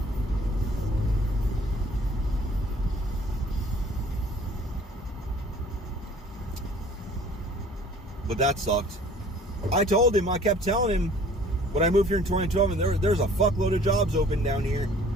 But that sucked. I told him, I kept telling him when I moved here in 2012, and there's a fuckload of jobs open down here.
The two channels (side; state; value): both; normal; correlation 0.52